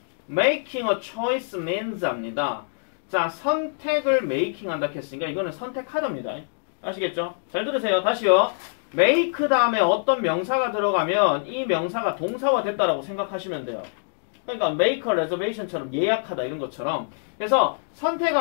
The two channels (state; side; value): silent; right; digital silence